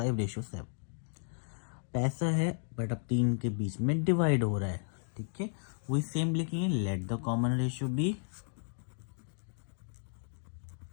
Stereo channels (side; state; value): right; silent; digital silence